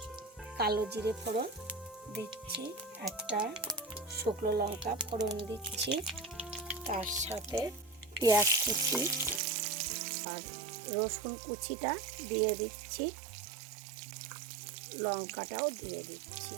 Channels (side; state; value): left; drops out; at 9.4 s